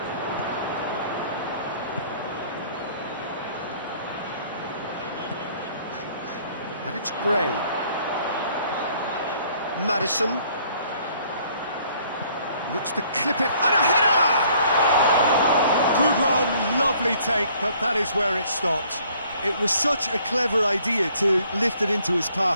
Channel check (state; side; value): inverted; both; correlation -0.60